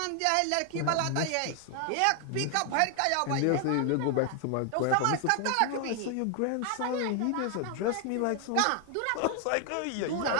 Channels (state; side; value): different; both; correlation 0.00